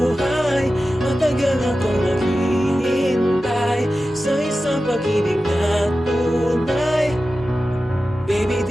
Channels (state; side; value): normal; both; correlation 0.94